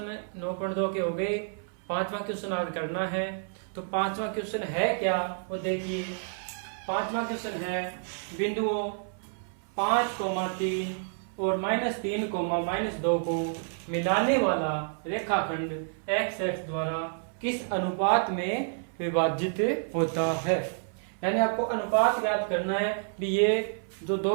9.2 के हो गए, 5वां क्वेश्चन आज करना है। तो 5वां क्वेश्चन है क्या वो देखिए। 5वां क्वेश्चन है बिंदुओं 5,3 और -3, -2 को मिलाने वाला रेखाखंड एक्स एक्स द्वारा किस अनुपात में विभाजित होता है। यानी आपको अनुपात याद करना है कि ये जो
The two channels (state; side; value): silent; left; 58 dB below the other